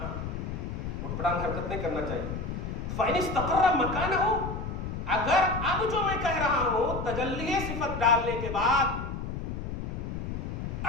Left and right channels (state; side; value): noise; left; rumble, 5 dB below the sound